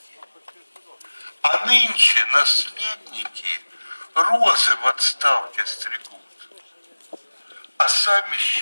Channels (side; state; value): both; inverted; correlation -1.00